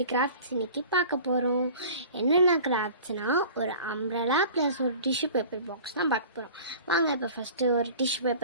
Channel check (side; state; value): both; inverted; correlation -0.42